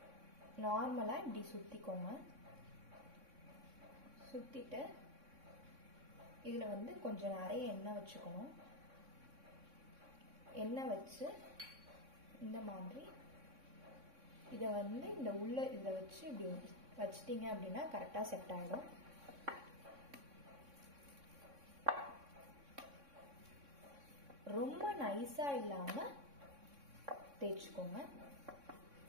நார்மலா இப்படி சுத்திக்கோங்க. சுத்திட்டு இதுல வந்து கொஞ்சம் நிறைய எண்ணெய் வச்சுக்கணும். எண்ணெய் வச்சு இந்த மாதிரி இதை வந்து இந்த உள்ள இதை வச்சு இப்படி வச்சிட்டீங்க அப்படின்னா கரெக்டா செட் ஆயிடும். ரொம்ப நைஸா இல்லாம தேய்ச்சுக்கோங்க.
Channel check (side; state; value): left; late; 3.6 ms